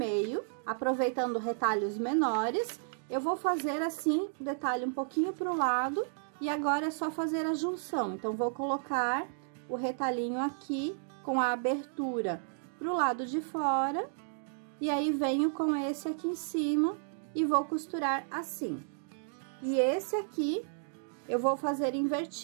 aproveitando retalhos menores. Eu vou fazer assim, o detalhe um pouquinho pro lado, e agora é só fazer a junção. Então, vou colocar o retalhinho aqui, com a abertura pro lado de fora, e aí venho com esse aqui em cima, e vou costurar assim. E esse aqui, eu vou fazer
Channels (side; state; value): left; silent; digital silence